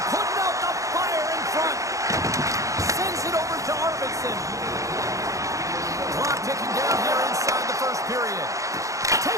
putting out the fire in front. Sends it over to Arvidsson. Clock ticking down here inside the first period.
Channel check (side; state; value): left; late; 0.16 ms